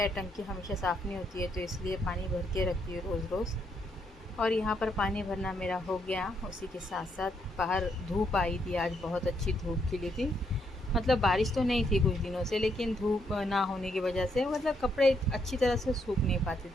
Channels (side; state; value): both; normal; correlation 0.75